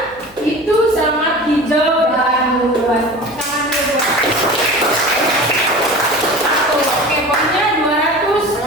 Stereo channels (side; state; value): left; noise; hum, 26 dB below the sound